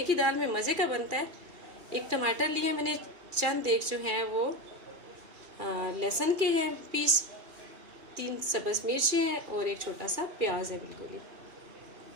की दाल में मज़े का बनता है। एक टमाटर लिया मैंने, चंद एक जो है वो लहसुन के हैं पीस, 3 सब्ज़ मिर्चें हैं और एक छोटा सा प्याज है बिल्कुल ही।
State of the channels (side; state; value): left; late; 2.4 ms